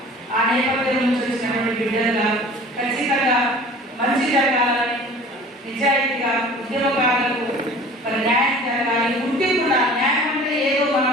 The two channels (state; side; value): normal; both; correlation 0.44